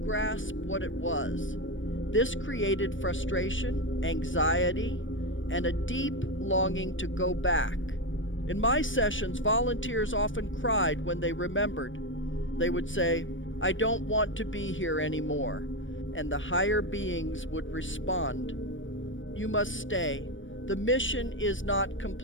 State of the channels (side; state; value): right; late; 0.56 ms